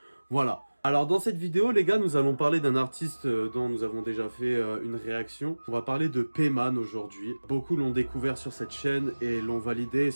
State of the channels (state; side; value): inverted; both; correlation -1.00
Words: Voilà. Alors dans cette vidéo, les gars, nous allons parler d'un artiste dont nous avons déjà fait une réaction. On va parler de Payman aujourd'hui. Beaucoup l'ont découvert sur cette chaîne et l'ont validé,